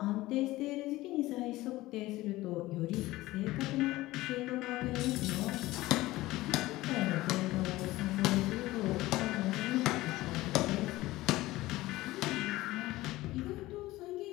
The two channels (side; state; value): right; quieter; 18.0 dB